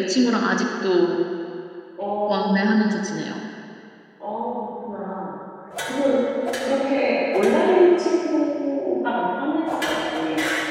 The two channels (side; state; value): both; identical; correlation 1.00